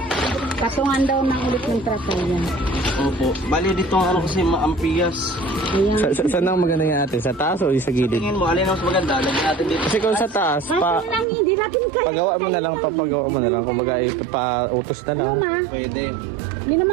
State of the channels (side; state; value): left; drops out; at 11.2 s